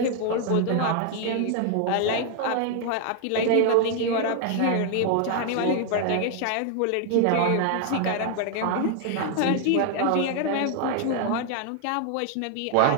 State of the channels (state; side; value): different; both; correlation 0.00